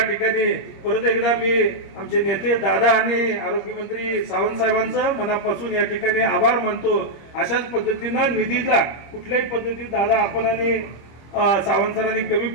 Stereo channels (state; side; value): late; right; 25 ms